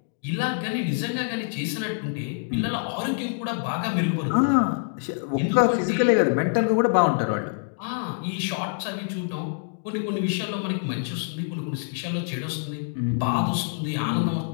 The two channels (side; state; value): right; silent; digital silence